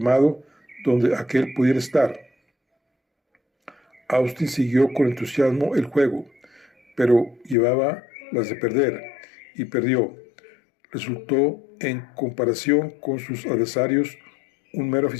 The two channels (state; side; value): drops out; right; at 7.6 s